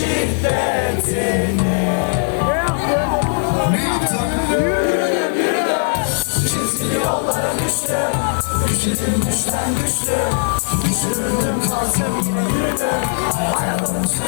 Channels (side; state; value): right; silent; digital silence